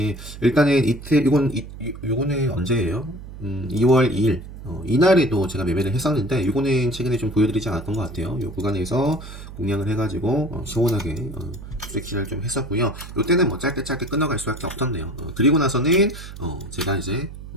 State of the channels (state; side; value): noise; right; hum, 13 dB below the sound